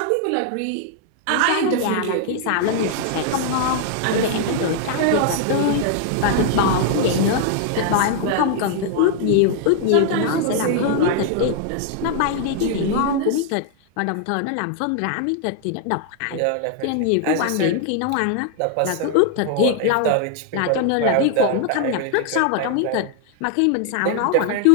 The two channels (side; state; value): both; different; correlation 0.00